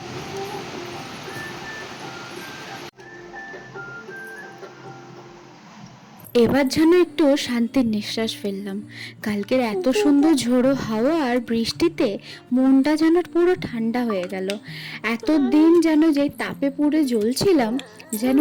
এবার যেন একটু শান্তির নিঃশ্বাস ফেললাম। কালকের এত সুন্দর ঝোড়ো হাওয়া আর বৃষ্টিতে মনটা যেন পুরো ঠান্ডা হয়ে গেল। এতদিন যেন যে তাপে পুড়ে জ্বলছিলাম, যেন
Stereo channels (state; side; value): identical; both; correlation 1.00